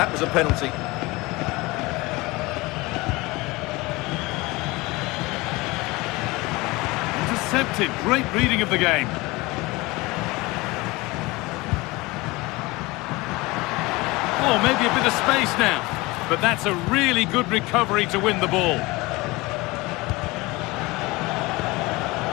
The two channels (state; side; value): quieter; right; 22.5 dB